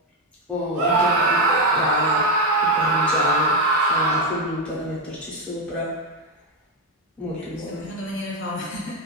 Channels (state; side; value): normal; both; correlation 0.07